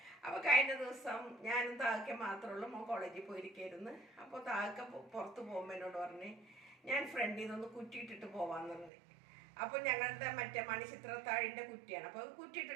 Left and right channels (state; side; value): drops out; left; at 8.9 s